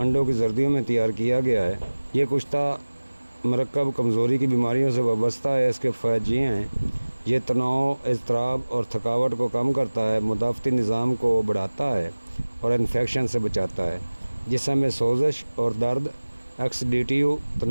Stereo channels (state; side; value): inverted; both; correlation -1.00